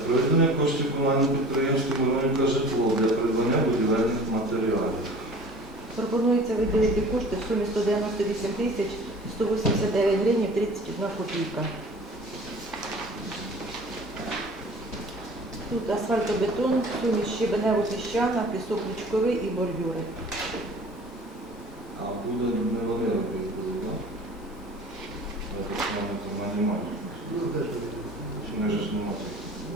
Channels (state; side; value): normal; both; correlation 0.44